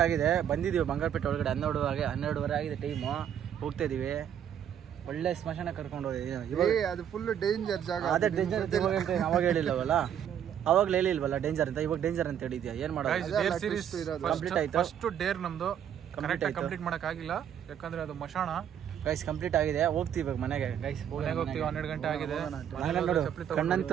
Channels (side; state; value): left; quieter; 9.4 dB